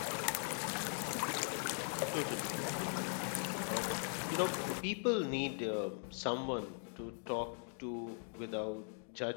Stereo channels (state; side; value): silent; right; 51 dB below the other